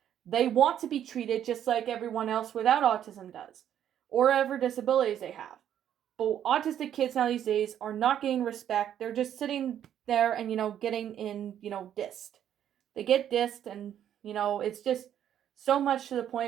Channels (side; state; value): left; quieter; 10.2 dB